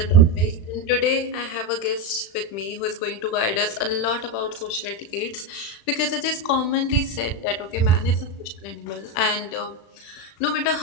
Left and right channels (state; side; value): late; right; 36 ms